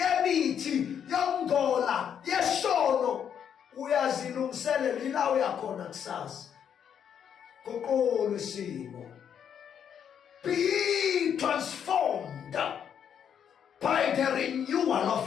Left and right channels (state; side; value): quieter; right; 8.4 dB